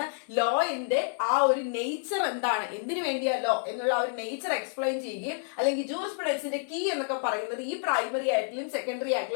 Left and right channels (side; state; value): right; silent; digital silence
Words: ലോയിന്റെ ആ ഒരു നേച്ചർ എന്താണ്, എന്തിനു വേണ്ടിയാ ലോ എന്നുള്ള ഒരു നേച്ചർ എക്സ്പ്ലെയിൻ ചെയ്യുകയും, അല്ലെങ്കിൽ ജൂറിസ്പ്രുഡൻസിന്റെ കീ എന്നൊക്കെ പറയുന്നത് ഈ പ്രൈമറി ആയിട്ടുള്ള സെക്കൻഡറി